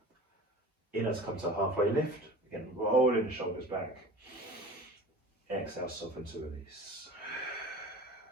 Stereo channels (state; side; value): normal; both; correlation 0.38